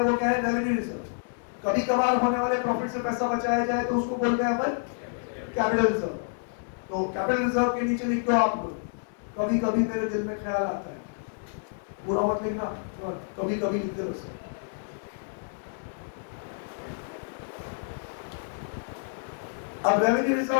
वो क्या है, रेवेन्यू रिजर्व। कभी कभार होने वाले प्रॉफिट से पैसा बचाया जाए तो उसको बोलते हैं अपन कैपिटल रिजर्व। तो कैपिटल रिजर्व के नीचे लिख दो आप लोग, कभी कभी मेरे दिल में ख्याल आता है, बुरा मत लिखना, कभी कभी लिखते रहो। अब रेवेन्यू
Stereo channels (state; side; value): silent; right; digital silence